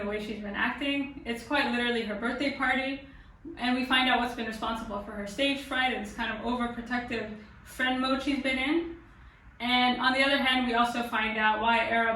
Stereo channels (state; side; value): identical; both; correlation 1.00